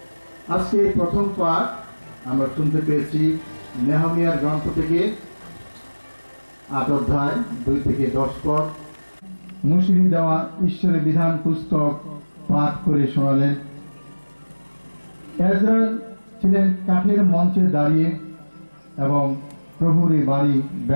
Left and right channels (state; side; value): inverted; both; correlation -1.00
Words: আজকে প্রথম পাঠ আমরা শুনতে পেয়েছি নেহমিয়ার গ্রন্থ থেকে 8 অধ্যায় 2 থেকে 10 পদ। মুসলিম দেওয়া ঈশ্বরের বিধান পুস্তক পাঠ করে শোনালেন। এজরা ছিলেন কাঠের মঞ্চে দাঁড়িয়ে এবং প্রভুর এই বাড়ি